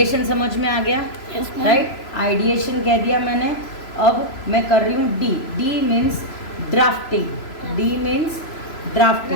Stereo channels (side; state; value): right; late; 3.0 ms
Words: समझ में आ गया, राइट? आइडिएशन कह दिया मैंने। अब मैं कर रही हूँ D. D means drafting. D means